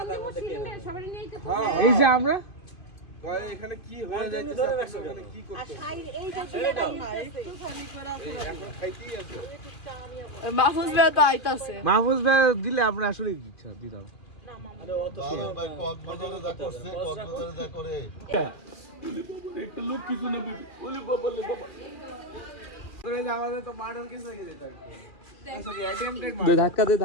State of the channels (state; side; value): late; right; 2.4 ms